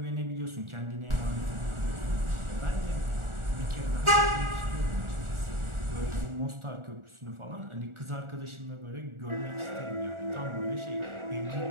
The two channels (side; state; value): left; late; 1.4 ms